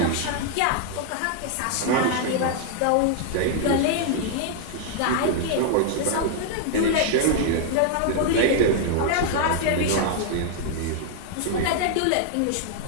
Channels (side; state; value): both; different; correlation 0.00